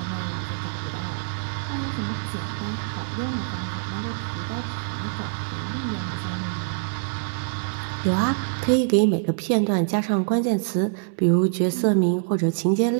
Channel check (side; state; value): left; silent; digital silence